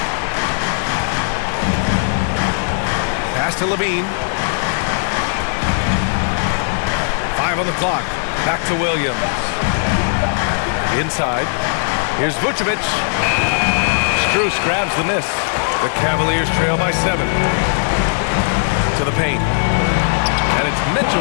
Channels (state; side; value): silent; right; digital silence